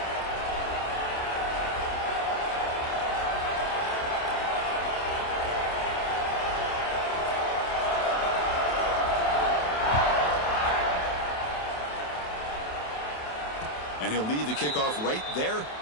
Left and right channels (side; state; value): right; late; 27 ms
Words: And he'll lead the kickoff right there.